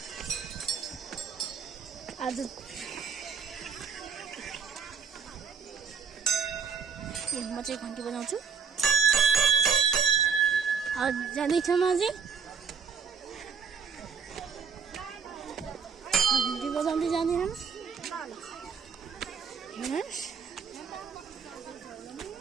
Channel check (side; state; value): left; quieter; 6.2 dB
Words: आज म चाहिँ घन्टी बजाउँछु। जाँदैछ म अझै घन्टी बजाउँदै जाँदैन। हेर्नुहोस्